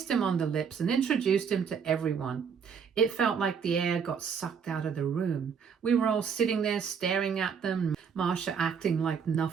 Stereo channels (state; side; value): quieter; left; 6.7 dB